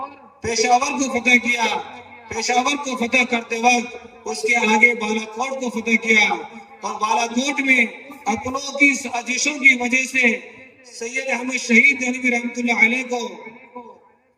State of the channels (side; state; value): both; identical; correlation 1.00